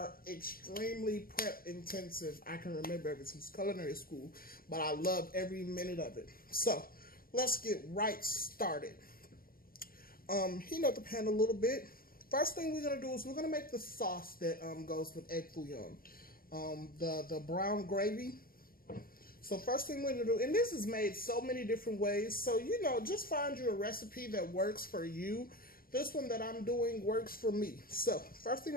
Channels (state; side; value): late; right; 0.42 ms